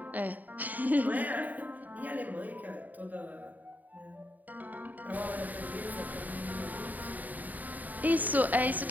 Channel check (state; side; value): late; left; 0.082 ms